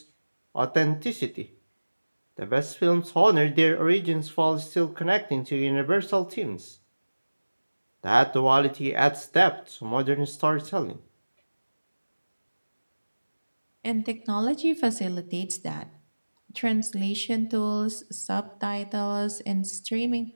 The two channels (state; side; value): inverted; both; correlation -1.00